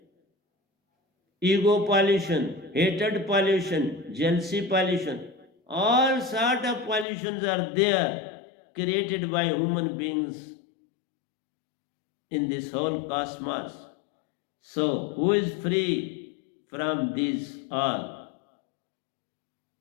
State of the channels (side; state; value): right; drops out; at 7.1 s